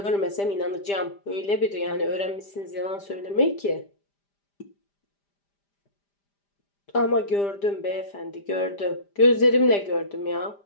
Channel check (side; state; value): right; late; 5.0 ms